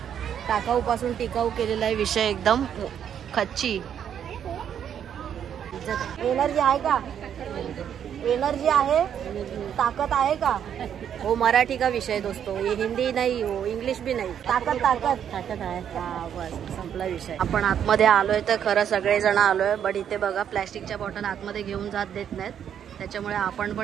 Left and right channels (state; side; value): quieter; left; 9.0 dB